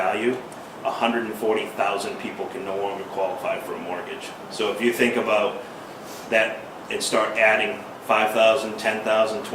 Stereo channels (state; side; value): identical; both; correlation 1.00